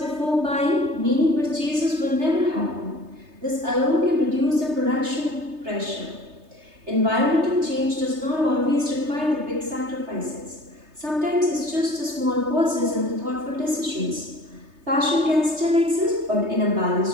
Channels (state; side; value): late; left; 3.3 ms